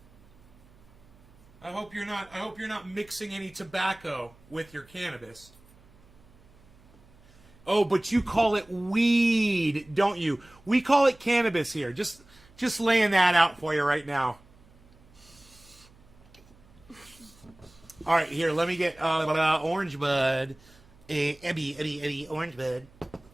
I hope you're not mixing any tobacco with your cannabis. Oh, but you call it weed, don't you? We call it cannabis here. Just laying that out for you right now. All right, here, let me get orange bud. Eddie, orange bud.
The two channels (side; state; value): right; noise; hum, 27 dB below the sound